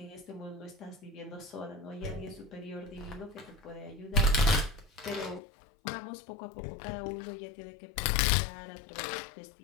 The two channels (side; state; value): right; drops out; at 5.4 s